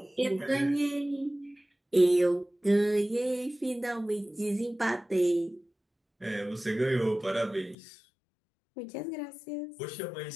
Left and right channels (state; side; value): drops out; right; at 7.8 s